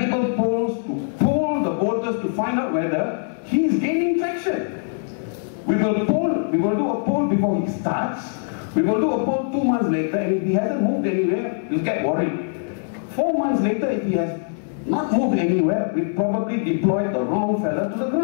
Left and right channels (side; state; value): right; silent; digital silence